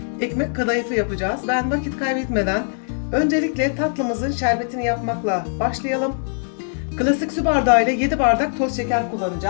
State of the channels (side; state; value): right; silent; digital silence